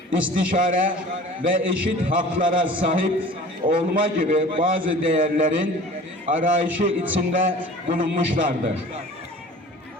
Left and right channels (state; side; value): normal; both; correlation 0.43